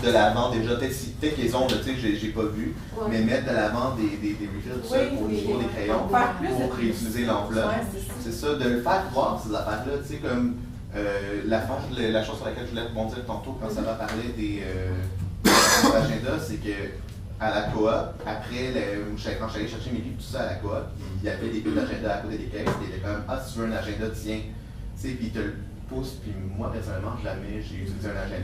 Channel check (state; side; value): identical; both; correlation 1.00